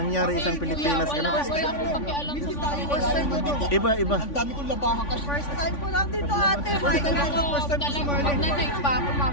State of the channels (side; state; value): right; late; 3.5 ms